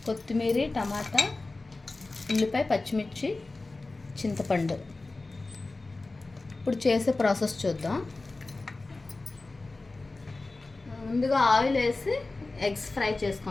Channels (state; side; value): quieter; right; 3.3 dB